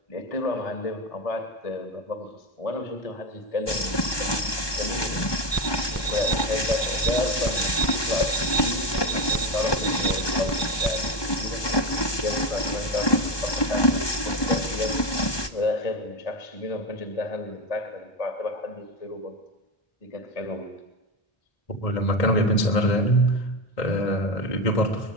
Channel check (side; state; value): right; late; 1.2 ms